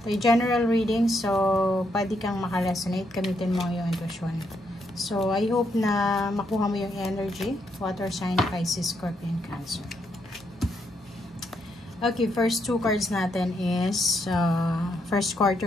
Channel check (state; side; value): normal; both; correlation 0.77